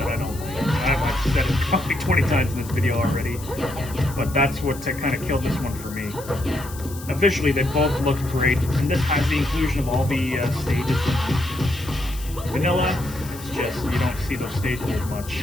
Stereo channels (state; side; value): noise; left; hiss, 16 dB below the sound